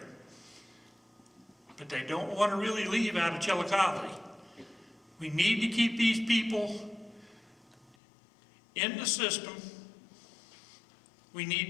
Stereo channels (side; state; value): right; drops out; at 8.0 s